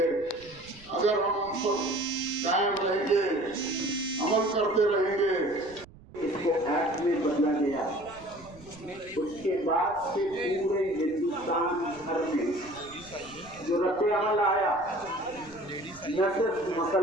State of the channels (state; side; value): noise; right; rumble, 22 dB below the sound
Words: अगर हम उन पर कायम रहेंगे, अमल करते रहेंगे। इसको एक्ट में बदला गया। उसके बाद से पूरे हिंदुस्तान भर में जो रद्द अमल आया, न सिर्फ